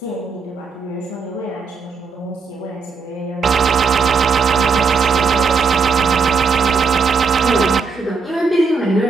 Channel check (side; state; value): left; quieter; 4.8 dB